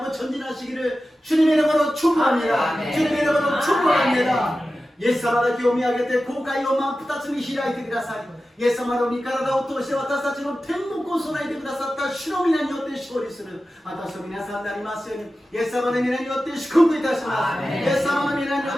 전진하시기를 주님의 이름으로 축복합니다. 아멘. 주님의 이름으로 축복합니다. イエス様だけを見上げて後悔を真っ二つに開いてください。イエス様の御体を通して私たちの天国を備えてくださった主の皆によって勝利する私と皆さんになりますようにイエス様の皆によって祝福いたします。イエス様の皆によ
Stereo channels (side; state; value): both; normal; correlation 0.94